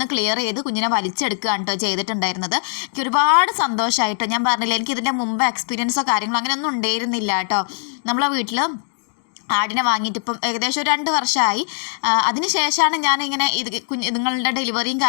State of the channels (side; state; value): right; silent; 58 dB below the other